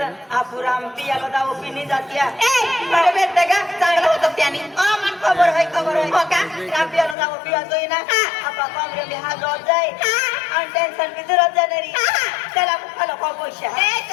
आपू राम पियाला जाऊ पिनी जातीया बरं भेटतं का चांगलं होतं त्याने मन खबर आहे हो का राम पियाला जाऊ पिया जोई ना आपा कमरे में हात रोज जाई आणि टेन्शन की जरूरत जाणारी त्याला खालो खा पैसा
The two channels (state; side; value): drops out; right; at 7.2 s